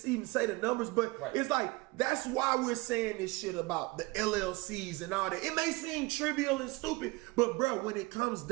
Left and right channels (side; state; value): left; quieter; 23.0 dB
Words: even say the numbers, but it's like, that's why we're saying this shit about the LLCs and all that. It may seem trivial and stupid, but bro, when it comes